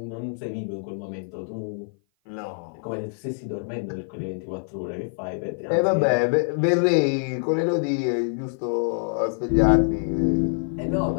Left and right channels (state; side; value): silent; right; 55 dB below the other